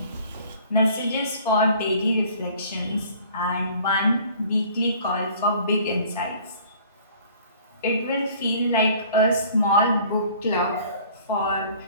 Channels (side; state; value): both; inverted; correlation -0.52